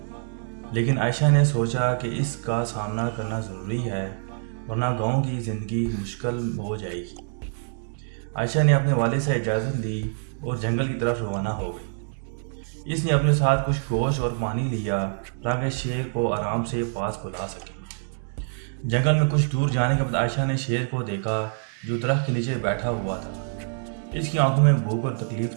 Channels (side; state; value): left; silent; digital silence